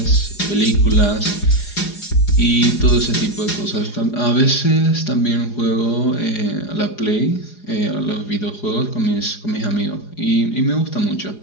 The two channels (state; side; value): late; right; 4.9 ms